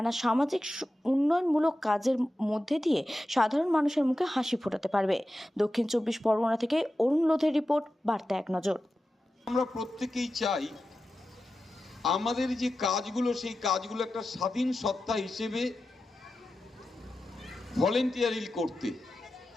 সামাজিক উন্নয়নমূলক কাজের মধ্যে দিয়ে সাধারণ মানুষের মুখে হাসি ফোটাতে পারবে। দক্ষিণ 24 পরগনা থেকে অরুণ লোধের রিপোর্ট, বার্তা এক নজর। আমরা প্রত্যেকেই চাই আমাদের যে কাজগুলো, সেই কাজগুলো একটা স্বাধীন সত্তা হিসেবে ভলেন্টিয়ারি করতে।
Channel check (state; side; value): normal; both; correlation 0.92